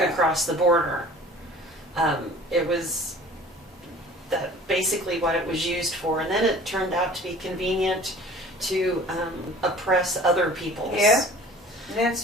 across the border. It was basically what it was used for. And then it turned out to be convenient to oppress other peoples. Yeah, and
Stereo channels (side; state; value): both; normal; correlation 0.46